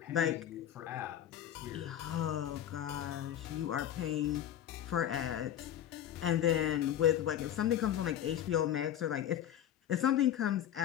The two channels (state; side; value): quieter; right; 10.9 dB